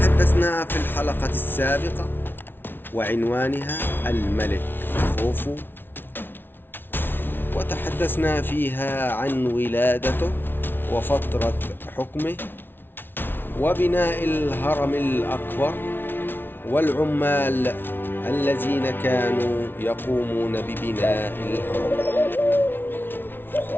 في الحلقة السابقة وعنوانها الملك خوفو، وتحدثنا فيها عن ولادته وفترة حكمه وبناء الهرم الأكبر والعمال الذين كانوا يقومون ببناء الهرم.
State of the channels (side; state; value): right; late; 0.10 ms